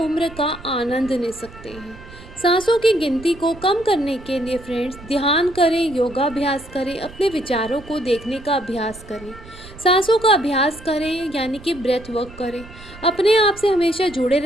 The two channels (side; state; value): right; noise; rumble, 18 dB below the sound